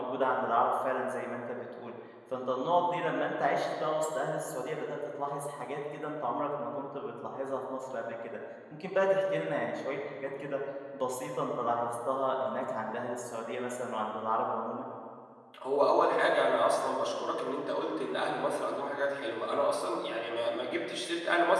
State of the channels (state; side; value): identical; both; correlation 1.00